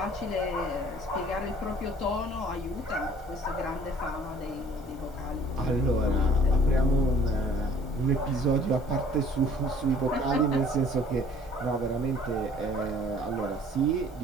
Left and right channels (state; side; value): normal; both; correlation 0.54